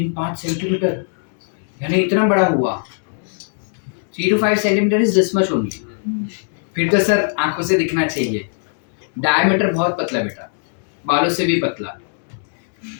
सेंटीमीटर यानी इतना बड़ा हुआ। 3 to 5 centimetre is this much only. फिर तो सर आंखों से दिखना चाहिए, डायमीटर बहुत पतला बेटा, बालों से भी पतला।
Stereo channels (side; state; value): right; silent; 62 dB below the other